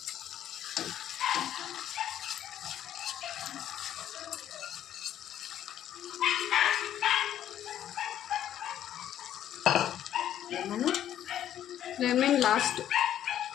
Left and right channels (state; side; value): quieter; right; 11.1 dB